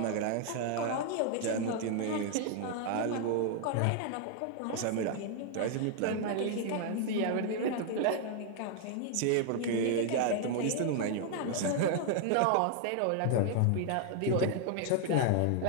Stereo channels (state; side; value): different; both; correlation 0.00